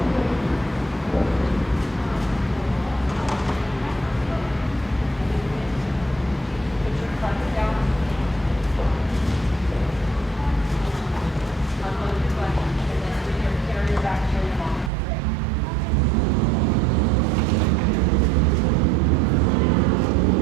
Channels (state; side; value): drops out; left; at 14.9 s